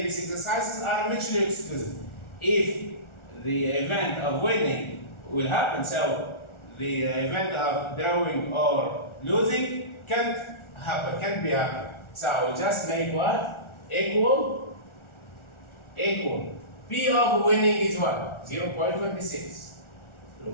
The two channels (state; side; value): late; right; 1.4 ms